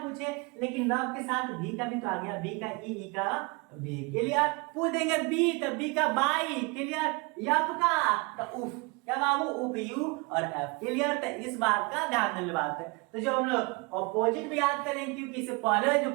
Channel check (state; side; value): quieter; left; 28.5 dB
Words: पूछे लेकिन लव के साथ भी का भी तो आ गया भी का ई का भी क्लियर पूछ देंगे बी तो बी का बाई क्लियर एफ का तो उफ क्या बाबू उप यू और एफ क्लियर तो इस बात का ध्यान देने बात है तो जो हम लोग ऑपोजिट भी याद करें क्योंकि इससे पहले जो